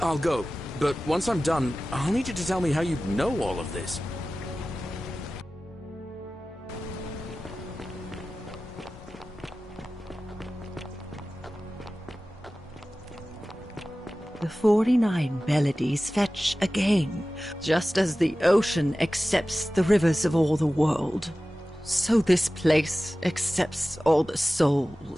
I'll go, but once I'm done, I'll need you to tell me how you know all of this. The 49 Beladies fetch again, just as the ocean accepts the rivers of all the world. So this place accepts all the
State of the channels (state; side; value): normal; both; correlation 0.96